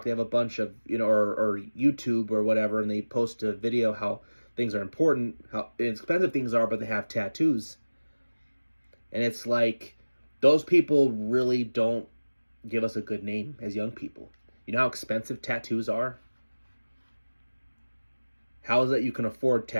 They have a bunch of or YouTube or whatever, and they post a video how things are important, how expensive things are, but they have tattoos. And it's like, those people really don't give us a good name as young people. You know how expensive tattoos are? How is it you can afford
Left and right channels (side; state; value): both; inverted; correlation -1.00